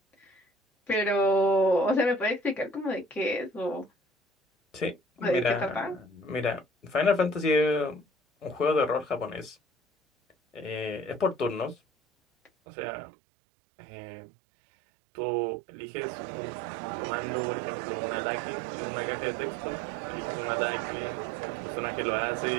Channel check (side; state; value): left; drops out; at 12.5 s